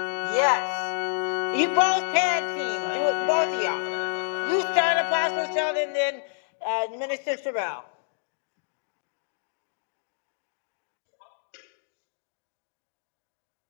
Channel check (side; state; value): right; silent; digital silence